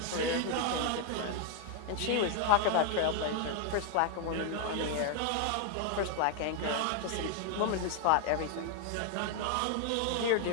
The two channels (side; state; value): both; different; correlation 0.00